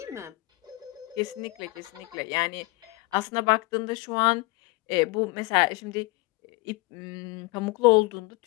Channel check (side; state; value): right; quieter; 23.8 dB